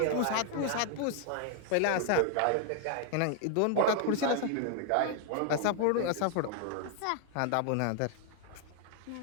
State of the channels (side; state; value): both; different; correlation 0.00